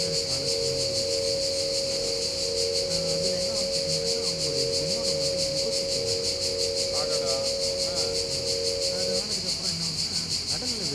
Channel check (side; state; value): both; identical; correlation 1.00